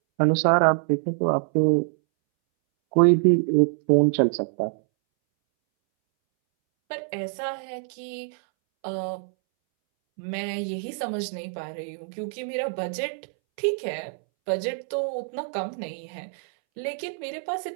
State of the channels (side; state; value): left; silent; 61 dB below the other